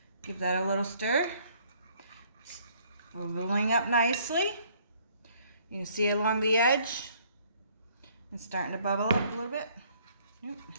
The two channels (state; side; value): inverted; both; correlation -0.62